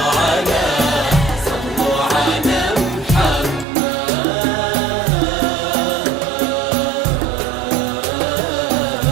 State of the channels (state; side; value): drops out; left; at 3.7 s